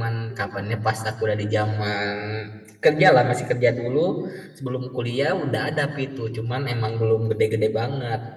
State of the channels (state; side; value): identical; both; correlation 1.00